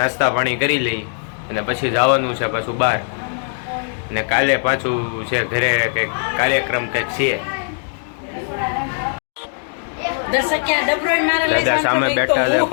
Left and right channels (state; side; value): silent; right; digital silence